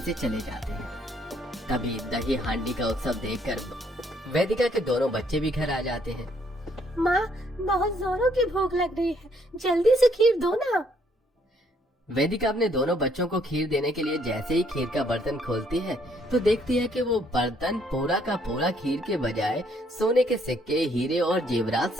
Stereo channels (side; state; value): both; normal; correlation 0.67